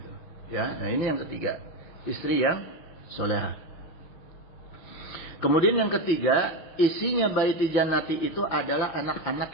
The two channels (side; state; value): right; late; 5.9 ms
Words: Ya. Nah ini yang ketiga, istri yang solehah. Kemudian yang ketiga, isinya baiti jannati itu adalah anak-anak